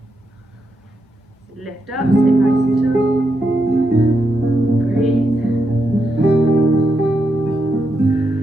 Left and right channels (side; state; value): both; normal; correlation 0.83